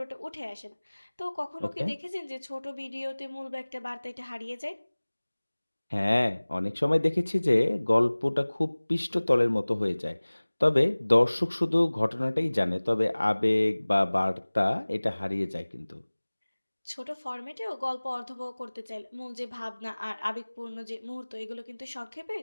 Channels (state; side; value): inverted; both; correlation -1.00